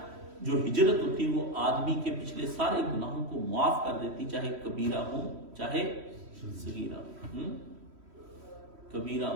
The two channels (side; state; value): left; late; 3.1 ms